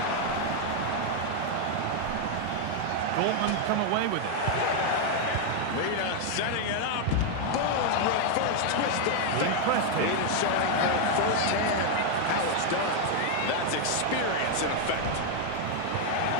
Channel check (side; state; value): both; different; correlation 0.01